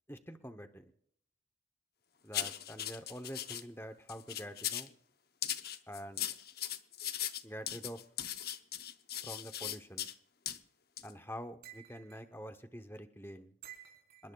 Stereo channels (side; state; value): right; quieter; 6.8 dB